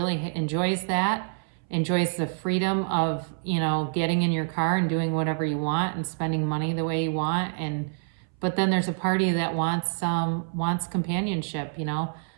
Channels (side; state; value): left; silent; 60 dB below the other